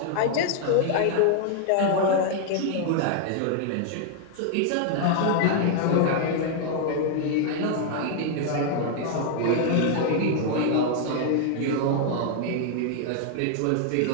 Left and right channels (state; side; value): different; both; correlation 0.00